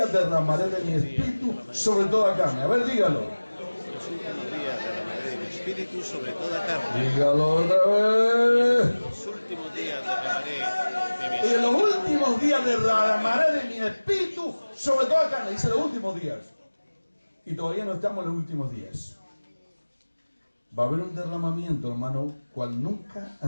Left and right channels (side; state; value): both; inverted; correlation -1.00